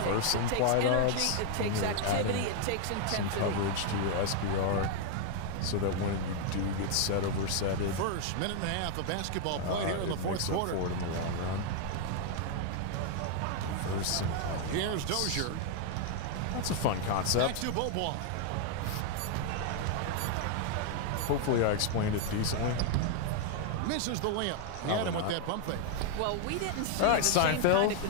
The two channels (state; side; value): different; both; correlation 0.00